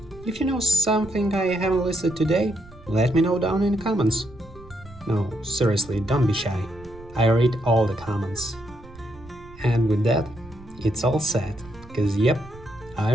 If you know something I haven't listed today, let me know down in the comments. No, seriously, don't be shy. I read all the comments. And with that, it's all set, cause yep, I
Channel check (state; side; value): noise; right; rumble, 20 dB below the sound